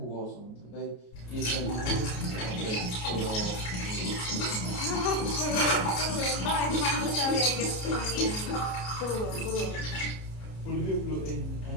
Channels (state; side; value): late; right; 33 ms